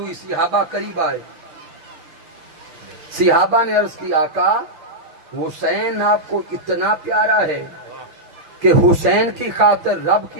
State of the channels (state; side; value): late; left; 6.6 ms